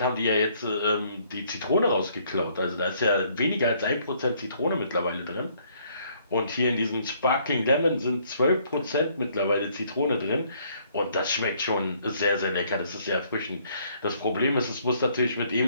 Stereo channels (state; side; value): inverted; both; correlation -0.65